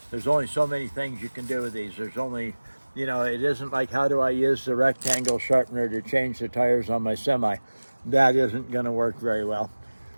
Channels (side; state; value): both; inverted; correlation -1.00